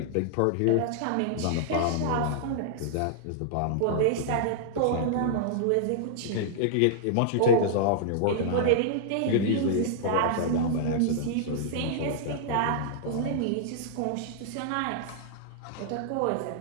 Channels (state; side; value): different; both; correlation -0.01